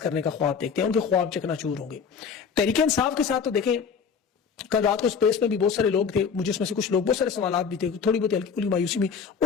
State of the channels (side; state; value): right; quieter; 6.3 dB